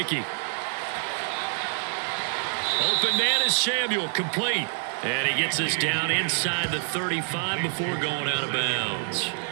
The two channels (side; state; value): left; silent; 60 dB below the other